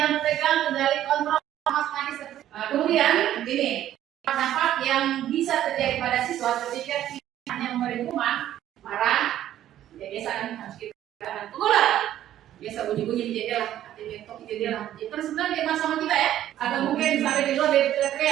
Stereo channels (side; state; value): left; quieter; 12.1 dB